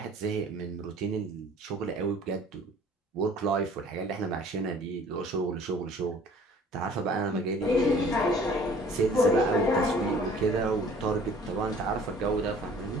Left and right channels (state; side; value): normal; both; correlation 0.51